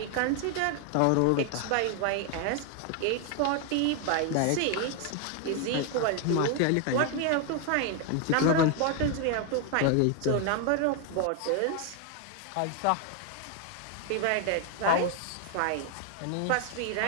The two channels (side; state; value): both; different; correlation 0.00